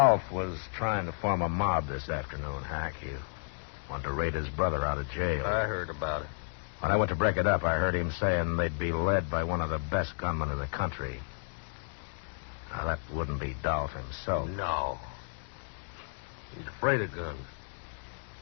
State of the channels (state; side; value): silent; right; 56 dB below the other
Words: was trying to form a mob this afternoon, Hack. He wanted to raid his brother out of jail. I heard about it. When I went to break it up, I heard him saying they'd be led by one of the best gunmen in the country. Now, that wouldn't be Dolph himself. No. He's afraid of guns.